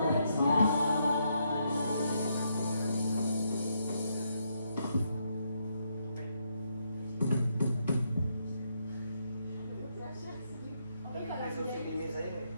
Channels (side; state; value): both; inverted; correlation -0.77